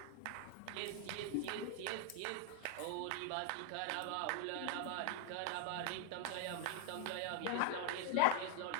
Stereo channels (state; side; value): different; both; correlation 0.01